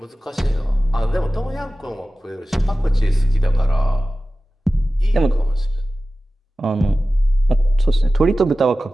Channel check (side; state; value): both; normal; correlation 0.95